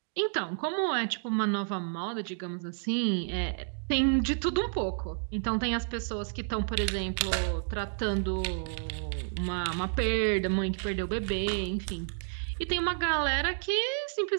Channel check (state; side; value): silent; left; digital silence